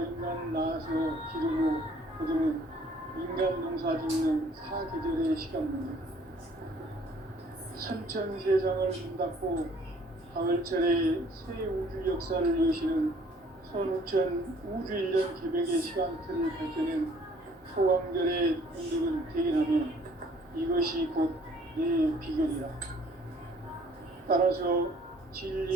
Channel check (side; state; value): both; normal; correlation 0.58